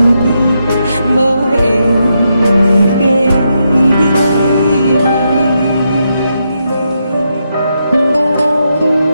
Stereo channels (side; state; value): both; inverted; correlation -0.82